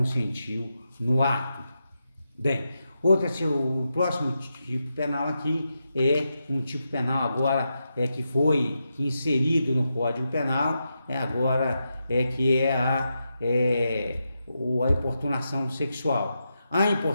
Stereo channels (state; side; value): inverted; both; correlation -0.86